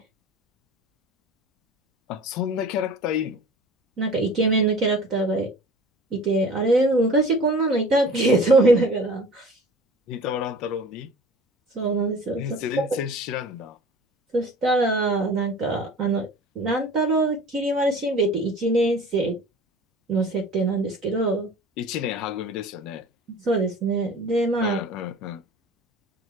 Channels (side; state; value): both; normal; correlation 0.42